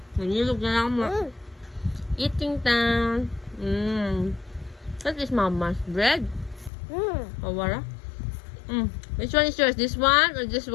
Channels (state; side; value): drops out; right; at 6.7 s